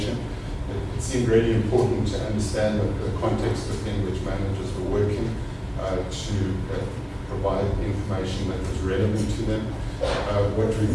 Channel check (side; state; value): both; identical; correlation 1.00